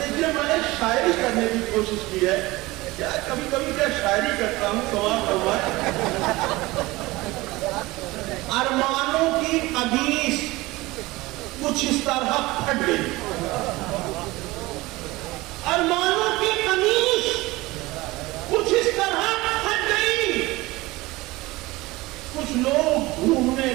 میں نے شاعری کرنے کی کوشش کی ہے، کیا کبھی کبھی کیا شاعری کرتا ہوں، سوال کروایا ارمانوں کی قمیص کچھ اس طرح پھٹ گئی، ارمانوں کی قمیص کچھ اس طرح پھٹ گئی، کچھ لوگ ڈھونڈنے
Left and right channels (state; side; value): quieter; left; 20.5 dB